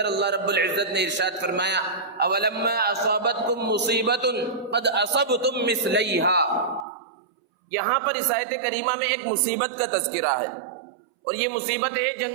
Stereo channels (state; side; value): drops out; left; at 6.9 s